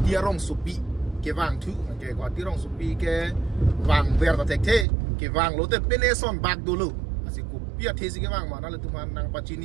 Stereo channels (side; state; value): left; drops out; at 4.9 s